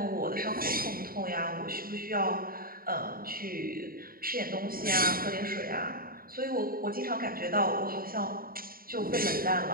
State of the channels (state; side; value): late; left; 0.42 ms